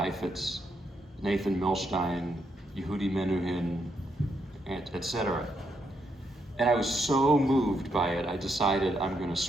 Nathan Milstein, Yehudi Menuhin, etc. And I was so moved by it, I decided I'm going to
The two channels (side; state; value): both; normal; correlation 0.78